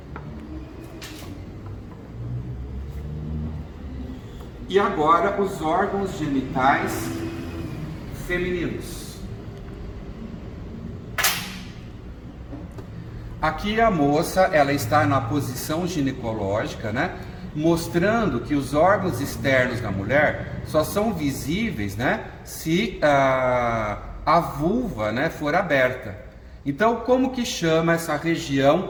E agora os órgãos genitais femininos. Aqui a moça, ela está na posição ginecológica, né? Mostrando que os órgãos externos da mulher só são visíveis, né? Se a vulva, né, for aberta. Então, como que chama essa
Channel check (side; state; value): both; identical; correlation 1.00